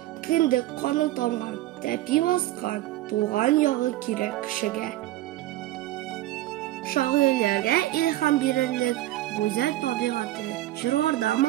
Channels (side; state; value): left; quieter; 15.6 dB